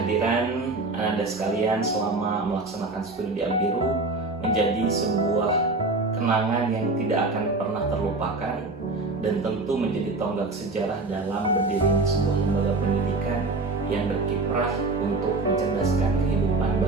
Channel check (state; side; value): quieter; left; 3.4 dB